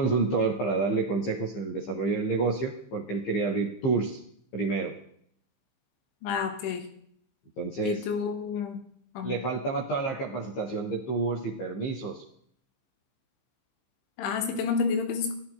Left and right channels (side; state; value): right; late; 15 ms